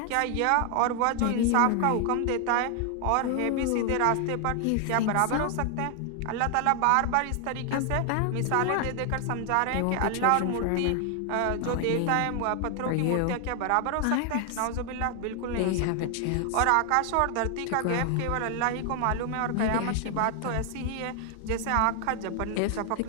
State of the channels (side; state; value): both; different; correlation 0.00